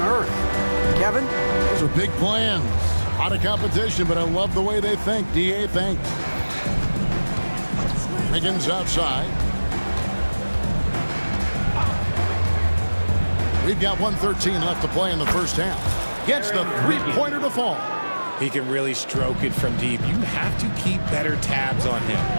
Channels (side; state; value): both; inverted; correlation -1.00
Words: earth. Kevin? Those are big plans. A lot of competition, but I love the way they think. DA thanks. Wiggins outside. We've got 1:13 left to play in the first half. Gets the three-pointer to fall. He can really stroke it from deep. You have to keep better tabs on him.